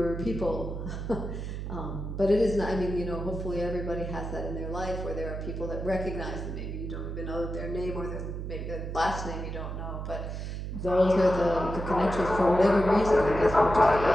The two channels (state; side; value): noise; right; hum, 6 dB below the sound